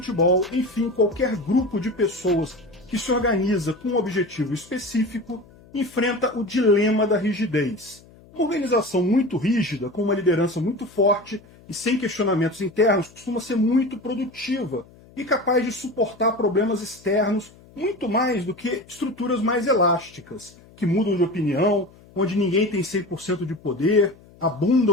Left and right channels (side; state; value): left; noise; hum, 25 dB below the sound